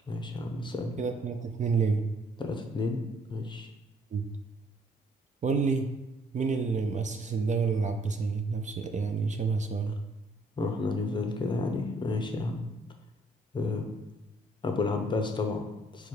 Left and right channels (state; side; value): normal; both; correlation 0.64